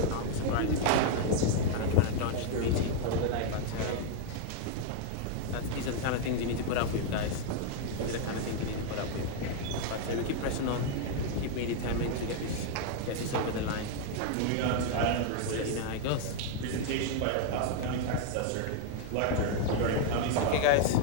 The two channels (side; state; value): both; different; correlation 0.00